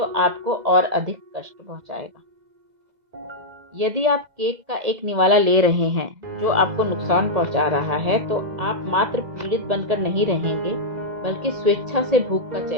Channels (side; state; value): left; late; 2.0 ms